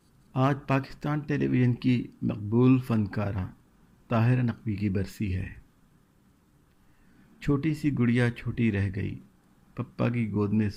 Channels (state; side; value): identical; both; correlation 1.00